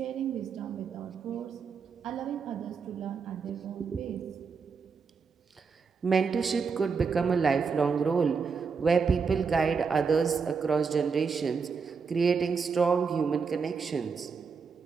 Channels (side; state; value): left; quieter; 5.5 dB